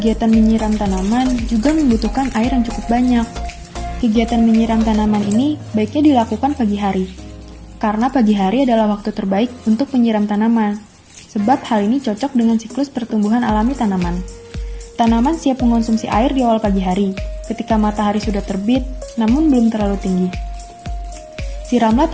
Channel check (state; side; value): identical; both; correlation 1.00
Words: menyiram tanaman juga membutuhkan air yang cukup banyak. Kegiatan menyiram tanaman ini baiknya dilakukan pagi hari, karena pagi hari adalah waktu terbaik untuk menyiram tanaman, sebab hal ini cocok dengan siklus pertumbuhan alami tanaman. Tanaman siap mengonsumsi air di awal pagi hari, ketika matahari sudah terbit, namun belum terlalu tinggi. Siramlah